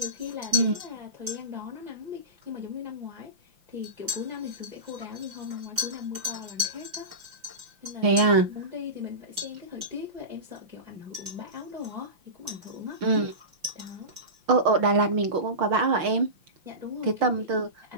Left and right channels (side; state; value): left; late; 5.8 ms